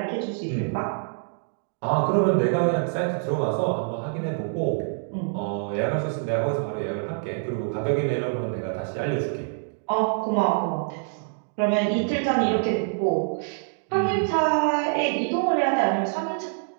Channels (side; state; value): left; silent; digital silence